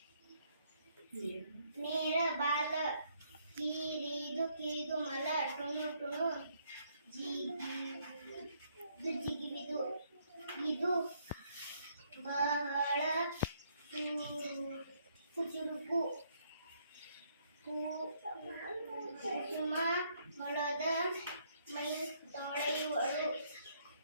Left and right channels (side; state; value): both; inverted; correlation -0.70